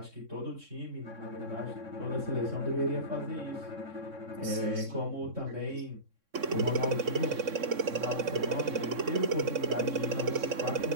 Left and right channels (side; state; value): left; late; 3.6 ms